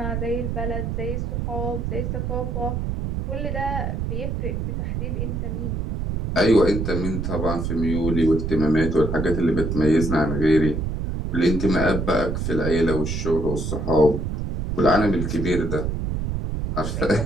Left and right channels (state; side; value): noise; right; rumble, 2 dB below the sound